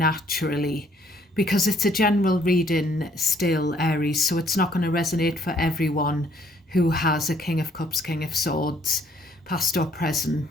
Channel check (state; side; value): normal; both; correlation 0.64